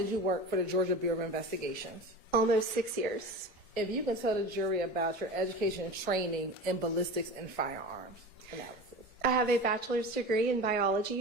you work for the Georgia Bureau of Investigations? Almost 6 years. If you can tell the jury about your education and training in ballistics and firearms analysis. I have a bachelor's degree in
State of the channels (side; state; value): both; normal; correlation 0.31